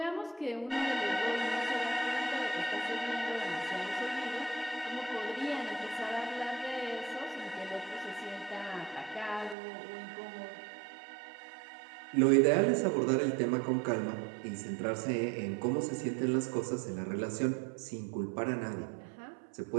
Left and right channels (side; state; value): left; drops out; at 9.6 s